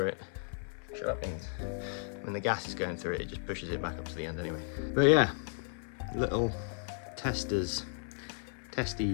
it, shut up Beans. When the gas is going through it, it just pushes it back up to the end anyway. But yeah, little testies.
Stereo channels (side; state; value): right; silent; 55 dB below the other